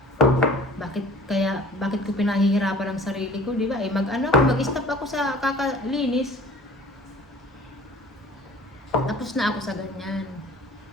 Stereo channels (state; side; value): normal; both; correlation 0.48